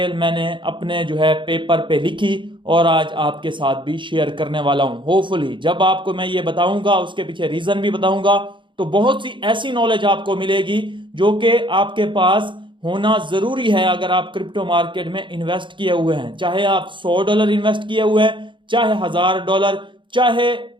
मैंने अपने जो है पेपर पे लिखी और आज आपके साथ भी शेयर करने वाला हूं। होपफुली जब आपको मैं ये बताऊंगा उसके पीछे रीजन भी बताऊंगा, तो बहुत सी ऐसी नॉलेज आपको मिलेगी जो कि आपके पास होना जरूरी है अगर आप क्रिप्टो मार्केट में इन्वेस्ट किए हुए हैं। चाहे आप $100 इन्वेस्ट किए हुए हैं, चाहे $1000, चाहे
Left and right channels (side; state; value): left; late; 0.24 ms